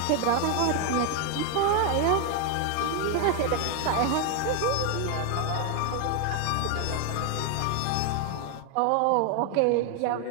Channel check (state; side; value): different; both; correlation 0.01